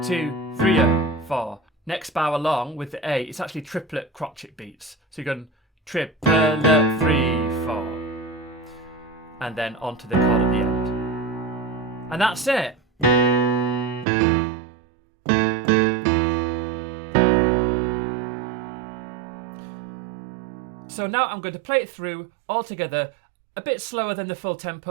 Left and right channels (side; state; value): left; drops out; at 14.1 s